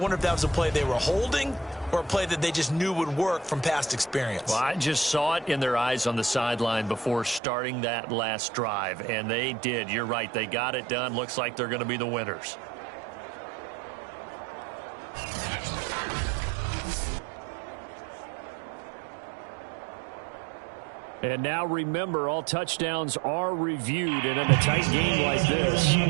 if that was a play they were holding or a play that they just knew would work from past experience. Well, I just saw it in their eyes on the sideline before starting that last drive, and they did. You're right. They got it done. Looks like they're going to be the winners. And now remember, all touchdowns are reviewed, and in a tight game like this,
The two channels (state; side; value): drops out; left; at 7.4 s